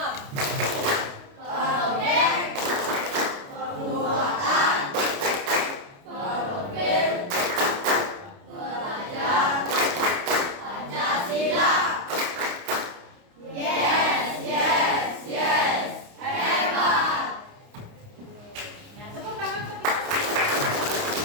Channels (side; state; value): left; late; 29 ms